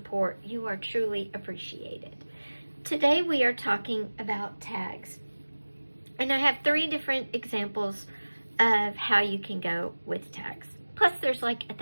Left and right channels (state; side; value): inverted; both; correlation -1.00